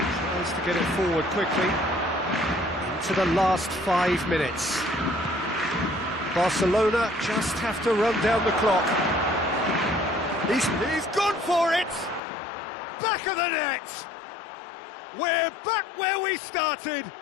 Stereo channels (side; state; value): right; drops out; at 12.2 s